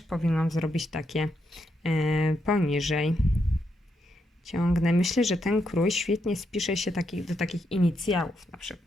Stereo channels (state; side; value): normal; both; correlation 0.81